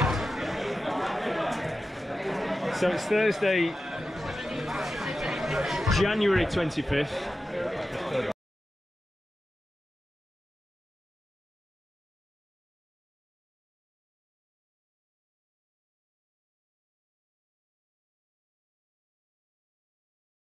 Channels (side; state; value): both; normal; correlation 0.92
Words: So it's Thursday, January 25th.